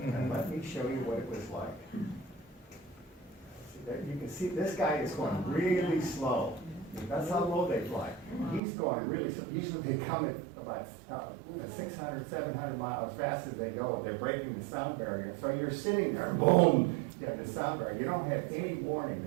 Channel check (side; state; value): left; drops out; at 8.6 s